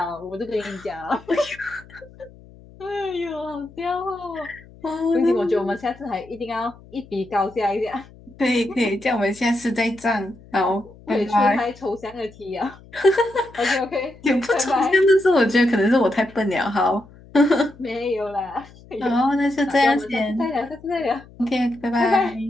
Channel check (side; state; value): left; noise; hum, 23 dB below the sound